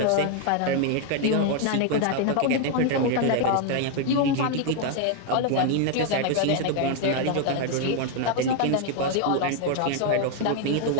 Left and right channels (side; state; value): both; different; correlation 0.00